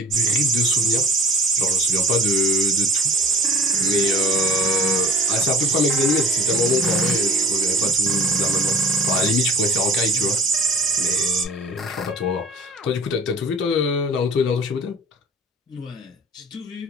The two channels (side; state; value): both; normal; correlation 0.42